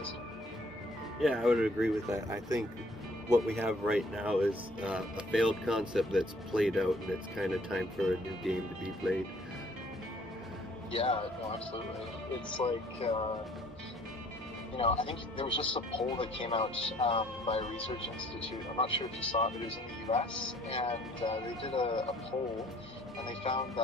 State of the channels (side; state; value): both; normal; correlation 0.59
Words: Yeah, I would agree with that. I think what we have right now is a failed concept that's played out, and it's kind of time for a new game to be played. Yeah, no, absolutely. It's like, I think there was just a poll that came out by a research institute. I'm not sure if you saw it, but it was in the US, and they did a poll, and they found